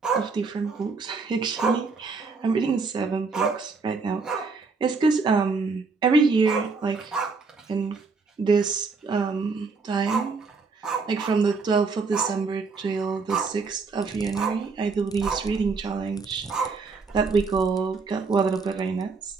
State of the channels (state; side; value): quieter; left; 4.5 dB